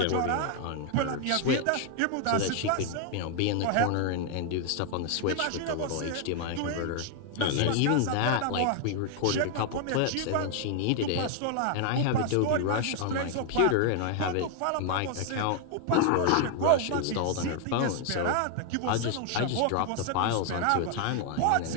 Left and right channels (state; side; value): different; both; correlation 0.00